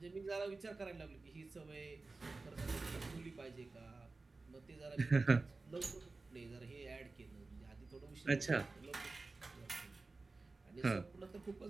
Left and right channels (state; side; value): quieter; left; 3.6 dB